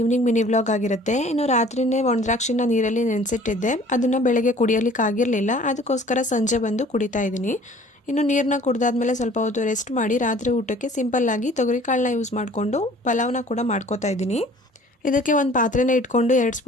mini vlog ಆಗಿರುತ್ತೆ. ಇನ್ನು ರಾತ್ರಿನೇ ಒಣದ್ರಾಕ್ಷಿನ ನೀರಲ್ಲಿ ನೆನೆಸಿಟ್ಟಿದ್ದೆ. ಅದನ್ನು ಬೆಳಗ್ಗೆ ಕುಡಿಯೋಲಿಕ್ಕೆ ಆಗಿರಲಿಲ್ಲ, ಅದಕ್ಕೋಸ್ಕರ ಸಂಜೆ ಬಂದು ಕುಡಿತಾ ಇದ್ದೀನಿ. ಇನ್ನು ನೀರನ್ನ ಕುಡ್ದಾದ್ಮೇಲೆ ಸ್ವಲ್ಪ ಹೊತ್ತು ರೆಸ್ಟ್ ಮಾಡಿ ರಾತ್ರಿ ಊಟಕ್ಕೆ ಸಿಂಪಲ್ಲಾಗಿ ತೊಗರಿಕಾಳನ್ನ ಯೂಸ್ ಮಾಡಿಕೊಂಡು ಪಲಾವ್ನ ಕೂಡ ಮಾಡ್ಕೋತಾ ಇದ್ದೀನಿ. ಇದಕ್ಕೆ ಒಂದು ಪಾತ್ರೆನ ಇಟ್ಕೊಂಡು 2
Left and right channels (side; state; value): both; normal; correlation 0.51